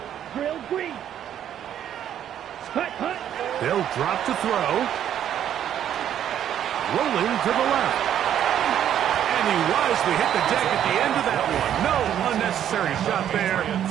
Drill green. Hut, hut. They'll drop to throw. Rolling to the left. And he wisely hit the deck at the end of that one. No unnecessary shot there.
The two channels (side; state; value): left; quieter; 10.2 dB